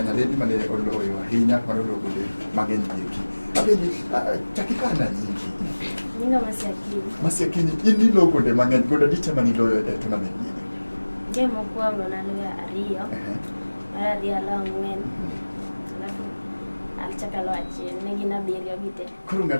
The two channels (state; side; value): inverted; both; correlation -1.00